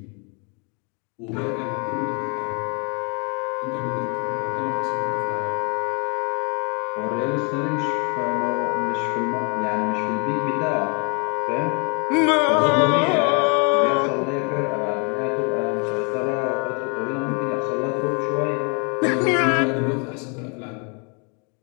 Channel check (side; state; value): right; quieter; 34.8 dB